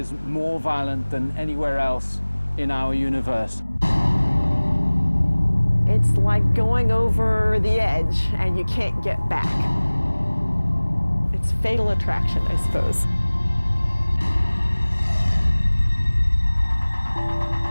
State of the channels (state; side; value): inverted; both; correlation -1.00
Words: more violent than anywhere else in our universe. It's like going over the edge and you can't get back. It's fatal attraction, I suppose.